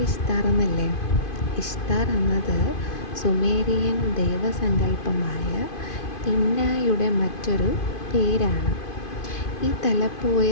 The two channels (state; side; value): late; right; 2.5 ms